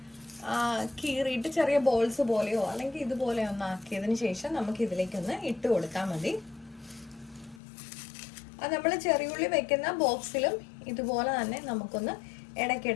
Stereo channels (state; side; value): drops out; right; at 7.6 s